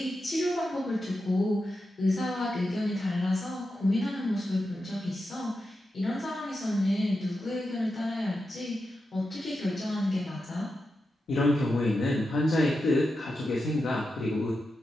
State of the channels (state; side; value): normal; both; correlation 0.89